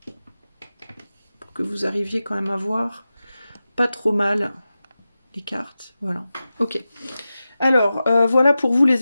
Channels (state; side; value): inverted; both; correlation -0.93